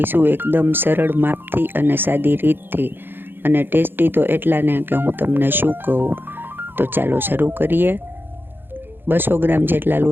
એકદમ સરળ માપથી અને સાદી રીતથી, અને ટેસ્ટી તો એટલા ને કે હું તમને શું કહું. તો ચાલો શરૂ કરીએ. 200 ગ્રામ જેટલા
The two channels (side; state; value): left; late; 0.10 ms